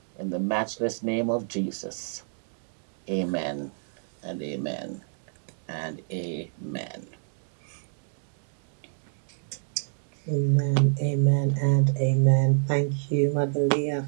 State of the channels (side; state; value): left; silent; digital silence